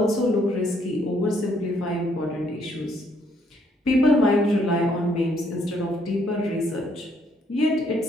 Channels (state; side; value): normal; both; correlation 0.69